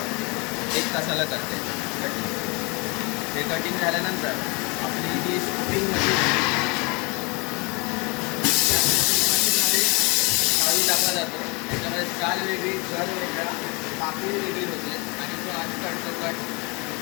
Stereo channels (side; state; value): right; quieter; 29.4 dB